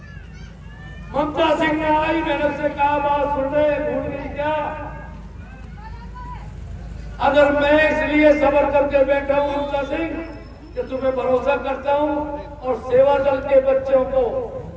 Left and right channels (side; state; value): both; identical; correlation 1.00